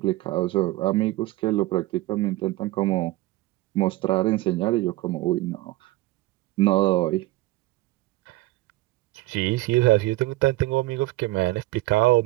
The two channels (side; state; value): left; quieter; 18.7 dB